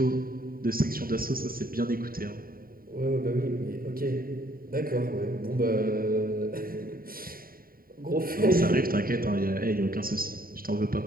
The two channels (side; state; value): left; late; 0.42 ms